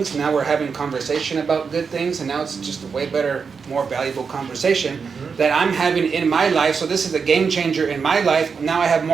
Now we're having conversation about good things. And now it's just a way better, more valuable conversation that I'm having in my life. So this is a game changer in my life. Now I have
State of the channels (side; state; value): left; quieter; 5.6 dB